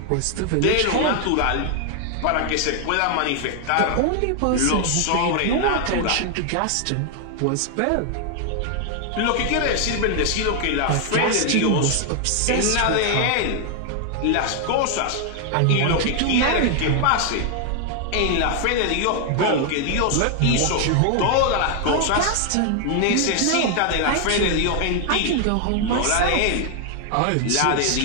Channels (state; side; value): different; both; correlation 0.00